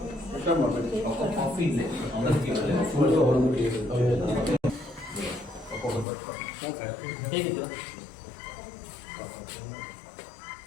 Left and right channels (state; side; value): drops out; right; at 6.1 s